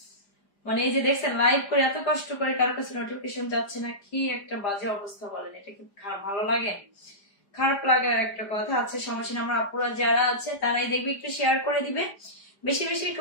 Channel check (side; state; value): right; late; 5.0 ms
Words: মানে এই যে দেখছেন লাইভ করে এত কষ্ট করে কারো কাছে নোটিফিকেশন যাচ্ছে না, কি একটা বাজে অবস্থা বলেন। এটা কি ভালো লাগে? খারাপ লাগার একটা কথা আছে, সমস্যা না। আমার আপুরা যারা আছে তারাই দেখবে, একটু শেয়ার করে দিবে, বেশি বেশি